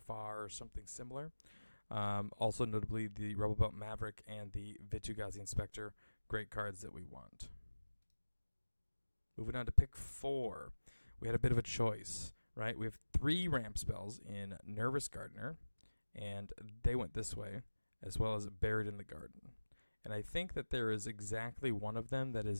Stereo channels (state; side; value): inverted; both; correlation -1.00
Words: or something similar. Also notably, the Rebel Belt Maverick and the Vitu-Ghazi Inspector, great cards that we want. Moving on to pick 4. We had a bit of a choice. Right, we have 3 ramp spells in Nervous Gardener, and they went this way, as well as Buried in the Garden. And I think that there is exactly one of them that